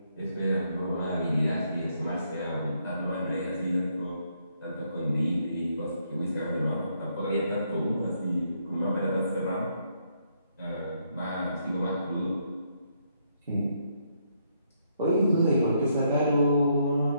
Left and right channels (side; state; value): both; inverted; correlation -0.74